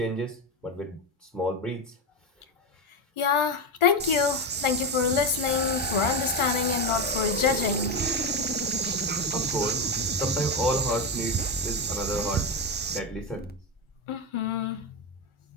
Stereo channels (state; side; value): normal; both; correlation 0.13